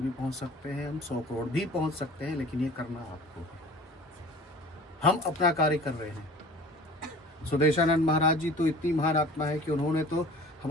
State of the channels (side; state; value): both; normal; correlation 0.44